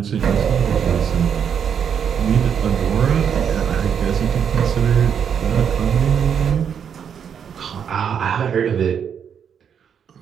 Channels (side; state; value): left; quieter; 7.8 dB